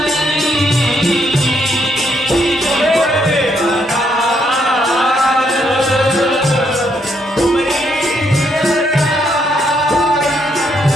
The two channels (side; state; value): both; normal; correlation 0.74